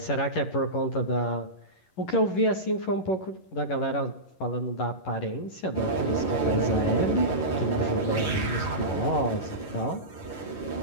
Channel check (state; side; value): late; right; 11 ms